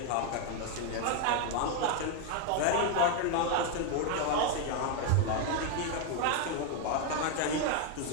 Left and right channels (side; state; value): both; different; correlation 0.01